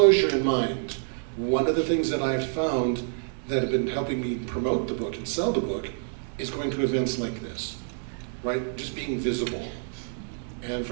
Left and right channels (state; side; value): silent; left; digital silence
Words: in mind, one of the things that I've found that have been helping me promote the book and sell the book is going to events like this, right? Just being visible. And